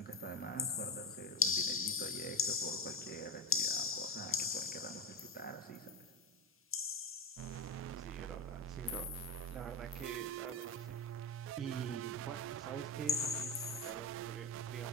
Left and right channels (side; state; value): both; normal; correlation 0.19